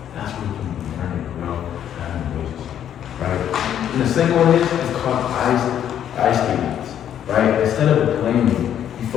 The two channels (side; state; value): right; quieter; 10.0 dB